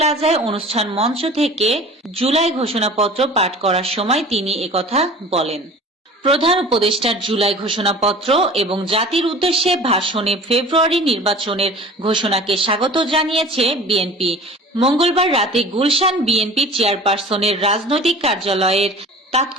অনুষ্ঠান মঞ্চ থেকে জুলাই ঘোষণাপত্র পাঠ করার সময় তিনি একথা বলেন। প্রধান উপদেষ্টার জুলাই ঘোষণাপত্র এবং জাতির উদ্দেশ্যে ভাষণে ফেব্রুয়ারি নির্বাচনের ঘোষণাকে স্বাগত জানিয়েছে বিএনপি। মঙ্গলবার রাতে গুলশান বিএনপি চেয়ারপারসনের রাজনৈতিক কার্যালয়ের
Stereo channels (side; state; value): both; normal; correlation 0.41